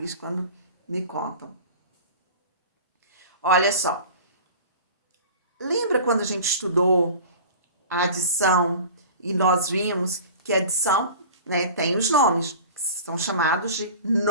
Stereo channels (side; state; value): both; inverted; correlation -0.39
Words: quando me contam. Olha só. Lembra quando a gente estudou a adição e nós vimos que a adição, né, tem os nomes, que são chamados de